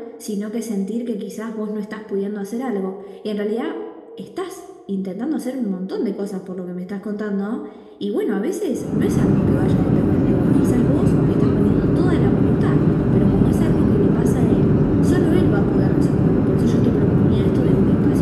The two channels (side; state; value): both; identical; correlation 1.00